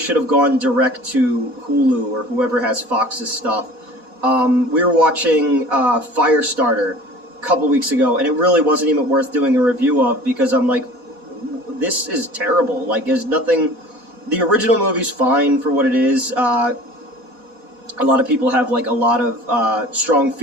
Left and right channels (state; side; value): late; left; 4.1 ms